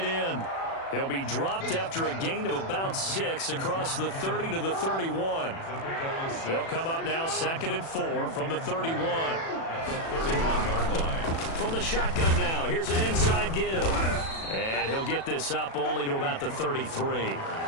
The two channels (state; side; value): late; right; 36 ms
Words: end. He'll be dropped after a gain of about 6 across the 30 to the 31. They'll come up now 2nd and 4 from the 31. From the shotgun now, here's an inside give. And he'll get this up only to about the 33.